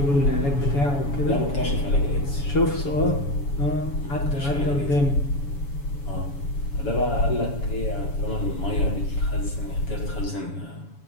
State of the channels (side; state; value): right; late; 7.1 ms